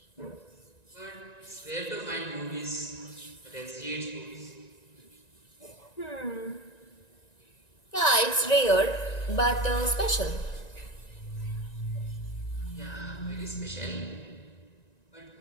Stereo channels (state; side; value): late; right; 1.9 ms